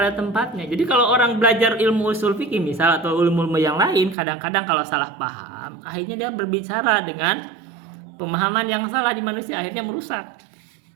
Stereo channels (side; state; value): left; drops out; at 4.2 s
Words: tempatnya. Jadi kalau orang belajar ilmu usul fikih misal atau ilmu yang lain, kadang-kadang kalau salah paham, akhirnya dia berbicara dengan pemahaman yang salah di manusia, akhirnya merusak.